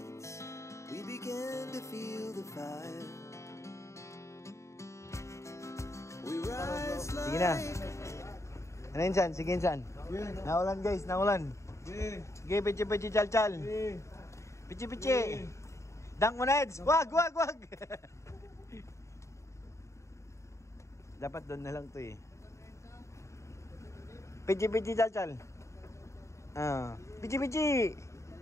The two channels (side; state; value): right; late; 0.14 ms